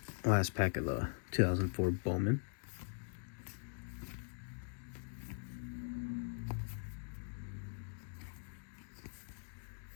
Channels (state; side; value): silent; right; digital silence